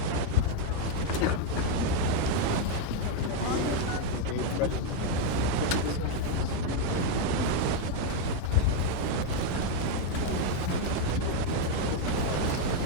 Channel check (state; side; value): different; both; correlation 0.01